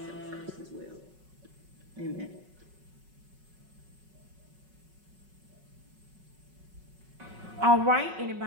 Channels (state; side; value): late; left; 5.4 ms